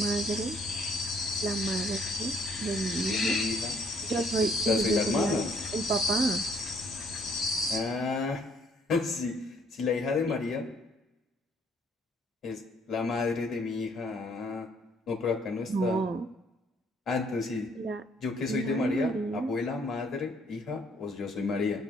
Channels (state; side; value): normal; both; correlation 0.65